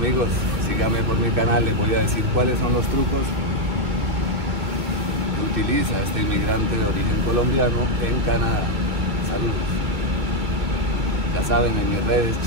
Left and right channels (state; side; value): late; left; 2.8 ms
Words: síganme por mi canal, les voy a decir cuáles son los trucos que utiliza este inmigrante de origen colombiano en Canadá. Saludos. Ya saben, en mis redes,